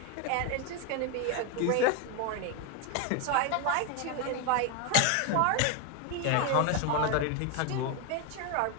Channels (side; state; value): both; different; correlation 0.01